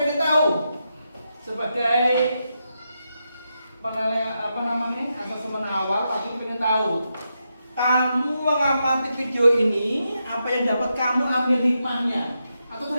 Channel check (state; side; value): inverted; both; correlation -0.85